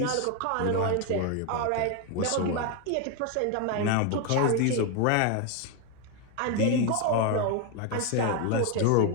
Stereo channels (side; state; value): both; different; correlation 0.01